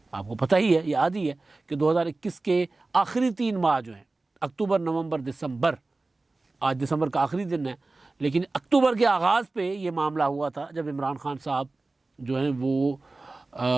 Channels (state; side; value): quieter; left; 3.3 dB